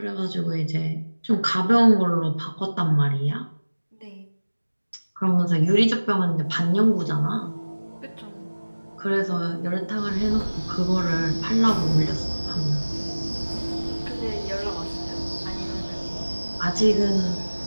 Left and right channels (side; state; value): both; inverted; correlation -1.00